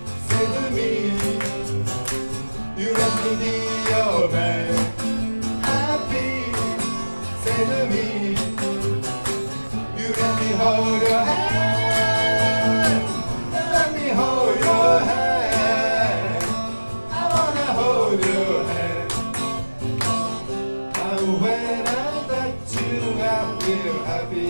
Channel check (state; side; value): inverted; both; correlation -1.00